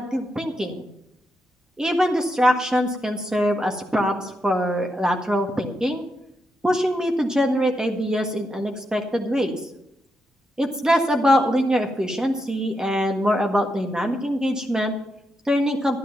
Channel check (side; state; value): both; normal; correlation 0.83